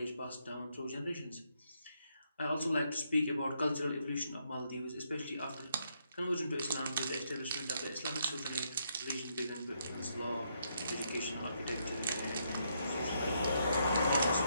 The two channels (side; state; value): both; inverted; correlation -0.75